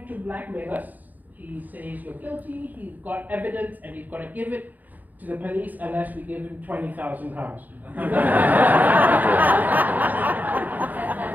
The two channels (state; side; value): late; left; 0.083 ms